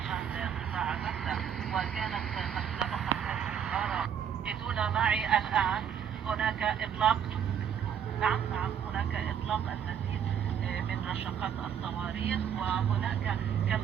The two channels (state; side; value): quieter; left; 8.4 dB